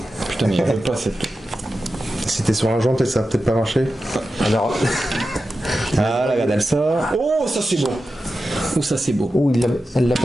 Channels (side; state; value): both; normal; correlation 0.92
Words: Putain, mais il veut pas cette. Si t'es sur un joint, peut-être ça va peut-être pas marcher. Alors. Ah, la regarde, elle sort. Oh, ça c'est beau. Oh, ça c'est beau. Oh, elle l'a